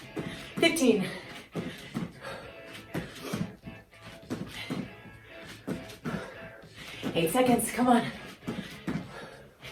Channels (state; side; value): identical; both; correlation 1.00